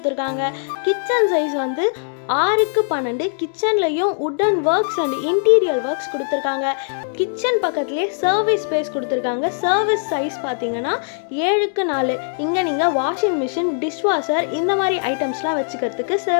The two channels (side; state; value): right; silent; digital silence